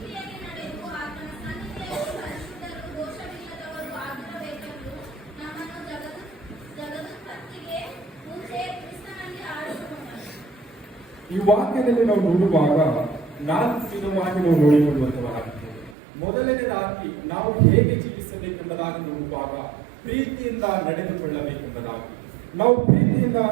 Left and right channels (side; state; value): left; drops out; at 16.0 s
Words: ಈ ವಾಕ್ಯದಲ್ಲಿ ನಾವು ನೋಡುವಾಗ 4 ವಿಧವಾಗಿ ನಾವು ನೋಡಿಕೊಳ್ಳುವಂತವರಾಗಿದ್ದೇವೆ. ಮೊದಲನೇದಾಗಿ ನಾವು ಹೇಗೆ ಜೀವಿಸಬೇಕೆಂಬುದಾಗಿ ನೋಡುವಾಗ ಪ್ರೀತಿಯಿಂದ ನಡೆದುಕೊಳ್ಳಬೇಕೆಂಬುದಾಗಿ, ನಾವು ಪ್ರೀತಿಯಿಂದ